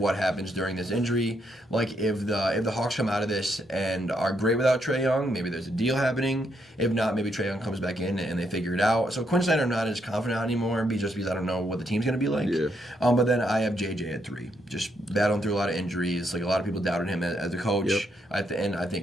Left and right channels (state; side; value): normal; both; correlation 0.77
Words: happens during this injury. Like if the Hawks come out of this and are great without Trae Young, maybe there's a deal happening. If not, maybe Trae Young comes back in and they figure it out. So Quinn Snyder, I'm not as confident anymore, just because I don't know what the team's going to be like. Yeah. But then I have JJ at 3, just battling through a lot of injuries. Like a lot of people doubted him as a coach. Yep. And I